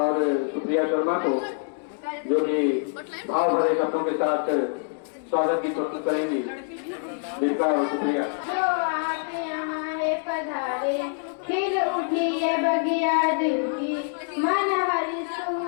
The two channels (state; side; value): silent; right; digital silence